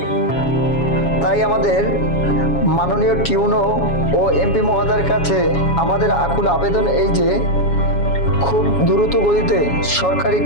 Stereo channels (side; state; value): right; late; 7.2 ms